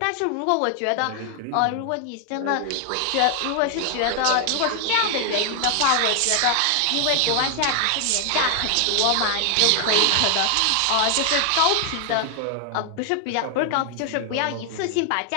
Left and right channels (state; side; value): different; both; correlation 0.00